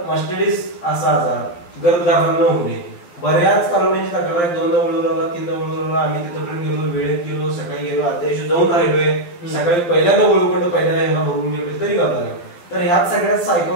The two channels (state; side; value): late; right; 11 ms